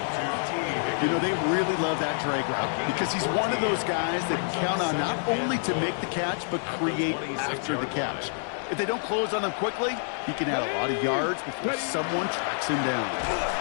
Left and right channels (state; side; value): silent; right; 60 dB below the other